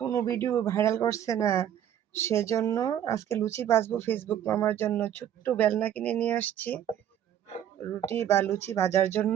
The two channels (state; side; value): quieter; left; 10.4 dB